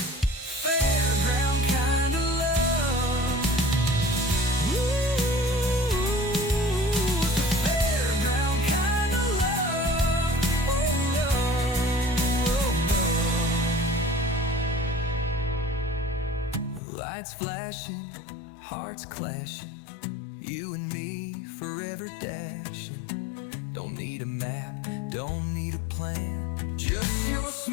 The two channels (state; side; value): drops out; right; at 16.8 s